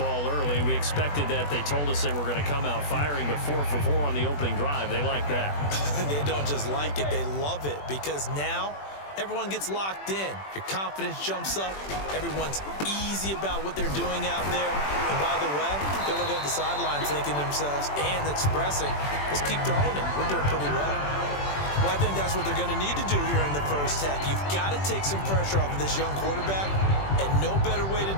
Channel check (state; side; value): late; right; 21 ms